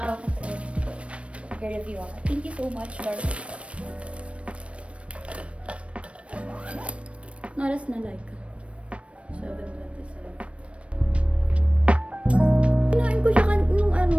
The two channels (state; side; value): late; left; 0.061 ms